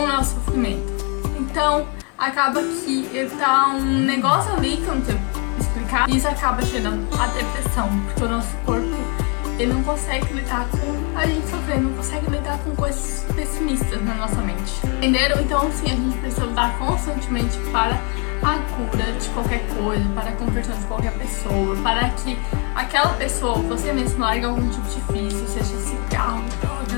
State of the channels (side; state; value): right; quieter; 35.0 dB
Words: o nosso sofrimento. Então, acaba que ele tá um negócio ali que eu não sei explicar. E isso acaba gerando a depressão. Porque o nosso corpo, ele não consegue lidar com a gente sofrer, não consegue lidar com coisas pessimistas na nossa mente. Entenderam? Então, sim, a gente precisa lutar constantemente para a cura de qualquer coisa, para a conversão de qualquer pessoa, para que aquela pessoa, você mesmo, largue algum tipo de vício, seja cigarro,